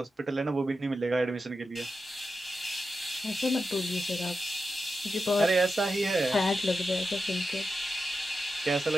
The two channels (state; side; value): normal; both; correlation 0.90